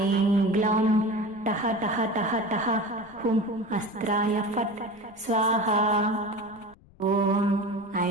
ग्लौं टः टः टः टः हुं अस्त्राय फट् स्वाहा। ॐ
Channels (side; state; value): left; noise; rumble, 27 dB below the sound